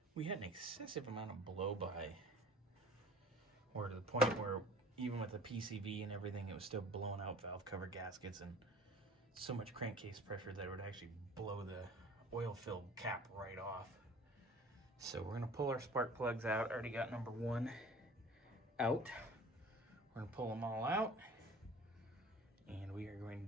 we had an excessive amount of blow-by, or to the point where even with the PCV and everything, it was still blowing out valve cover gaskets and so much crankcase pressure that it would actually blow the oil-filled cap right off. So we're gonna pull our spark plugs out. I already got number 1 out. We're gonna pull them all out, and we are going to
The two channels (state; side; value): normal; both; correlation 0.46